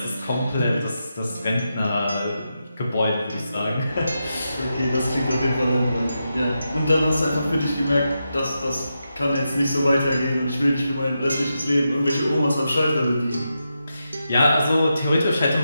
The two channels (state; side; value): inverted; both; correlation -0.87